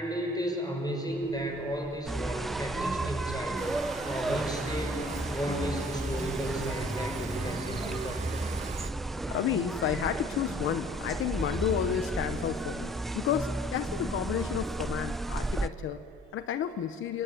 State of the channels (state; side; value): normal; both; correlation 0.55